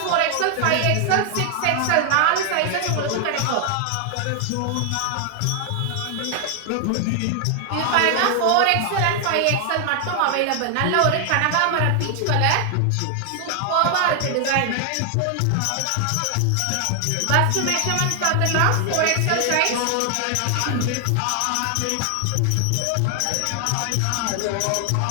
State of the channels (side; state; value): both; different; correlation 0.00